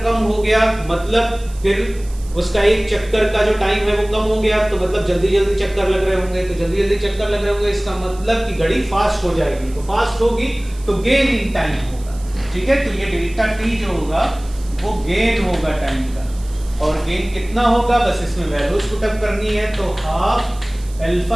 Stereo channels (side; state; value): right; noise; hiss, 22 dB below the sound